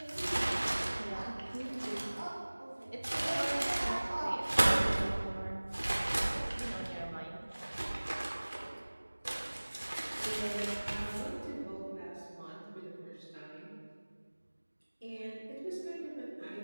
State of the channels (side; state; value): both; inverted; correlation -1.00